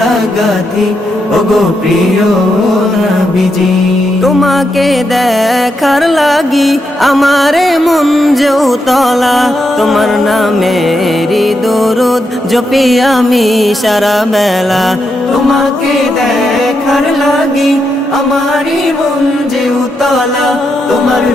গাঁথি ওগো প্রিয় নবীজি। তোমাকে দেখার লাগি আমারে মন যে উতলা, তোমার নামেরই দরুদ জপি আমি সারা বেলা। তোমাকে দেখার লাগি আমারই মন যে উতলা, তোমার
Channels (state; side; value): normal; both; correlation 0.83